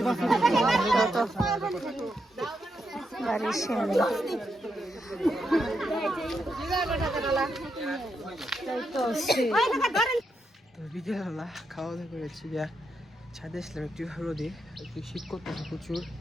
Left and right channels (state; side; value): normal; both; correlation 0.82